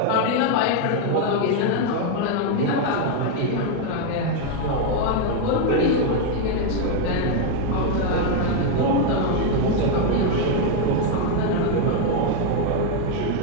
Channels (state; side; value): different; both; correlation 0.01